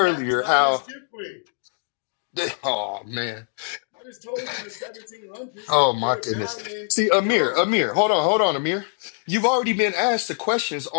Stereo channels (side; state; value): right; silent; 63 dB below the other